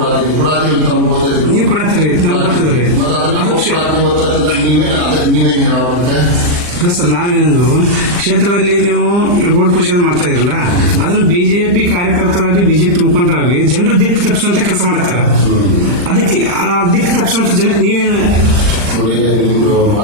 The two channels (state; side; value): late; left; 39 ms